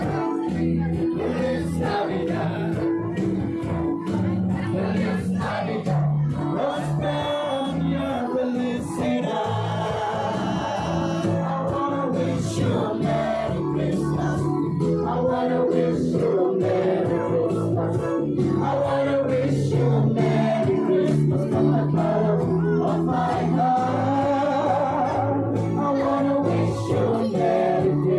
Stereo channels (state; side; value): identical; both; correlation 1.00